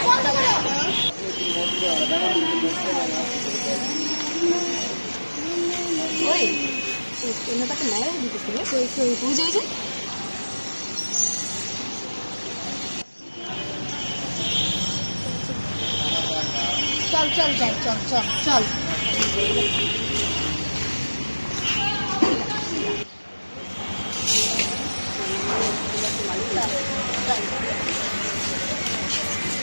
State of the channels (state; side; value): inverted; both; correlation -1.00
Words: বন্ধ করো। ওই তাকে নেয় দিতেছিল, বুঝে বুঝে। চল চল যাই, চল চল চল।